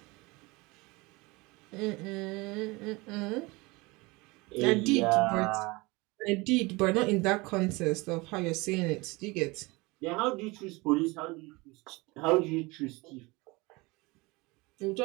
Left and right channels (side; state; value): left; quieter; 24.4 dB